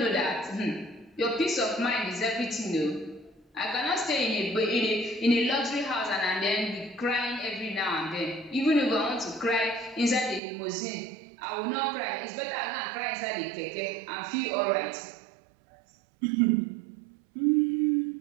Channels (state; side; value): drops out; left; at 10.4 s